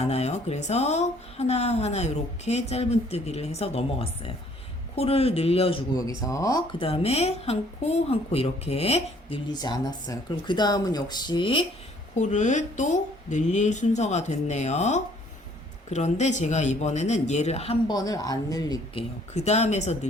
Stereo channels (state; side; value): normal; both; correlation 0.60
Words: 그래서 하나하나 이렇게 짧은뜨기를 해서 넘어갔어요. 코를 늘려주고 여기서 그 다음에 한 코 한 코 이렇게 늘리지 않았어요. 그럼 그 다음은 역시 코를 또 늘릴 순서가 됐네요. 그런데 제가 이번에는 얘를 한 번을 안 늘릴게요. 그 다음에서